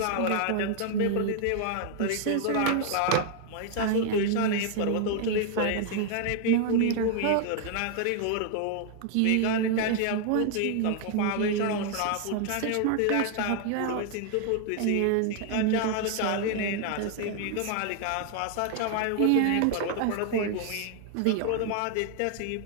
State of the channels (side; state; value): both; different; correlation 0.00